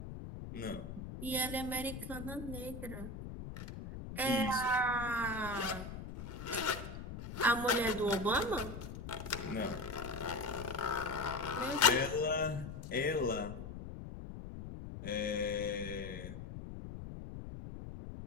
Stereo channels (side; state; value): left; noise; rumble, 9 dB below the sound